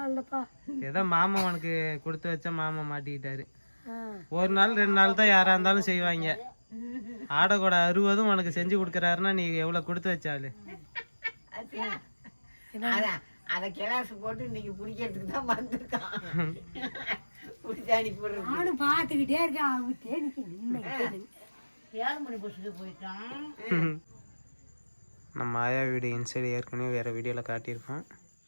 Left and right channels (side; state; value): both; inverted; correlation -1.00